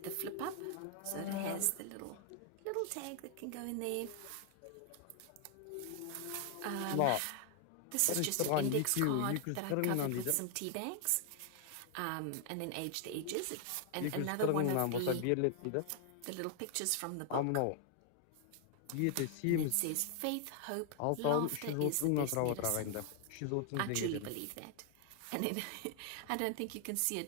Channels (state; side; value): different; both; correlation 0.00